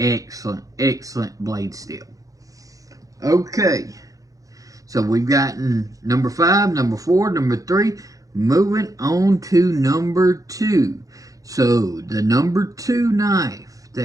blade steel. Okay, so we've gotten number 5, number 4, number 3. Moving on to number 2. So the number 2 knife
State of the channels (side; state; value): left; late; 0.17 ms